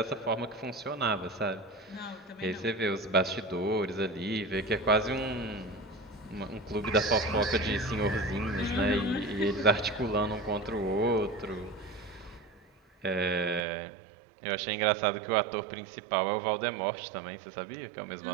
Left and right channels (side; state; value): left; drops out; at 13.6 s